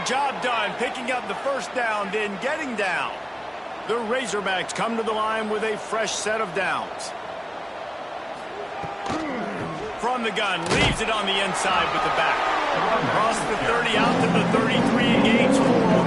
job done, picking up the first down, then getting down. The Razorbacks come to the line with a fresh set of downs. From the gun, leaves it on the inside with the back. Across the 30 out to the 33 and gains 4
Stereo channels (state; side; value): identical; both; correlation 1.00